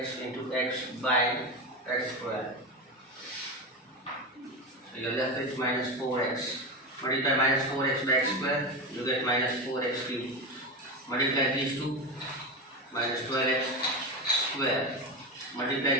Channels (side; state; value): both; normal; correlation 0.19